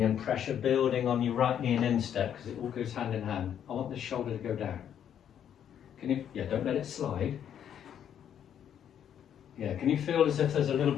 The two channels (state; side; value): quieter; right; 9.3 dB